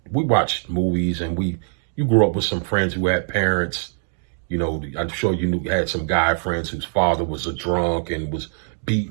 we watch movies and you grew up with some friends who had parents. I'm sure you had some guy friends whose father was a drunk and was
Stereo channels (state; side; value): silent; left; digital silence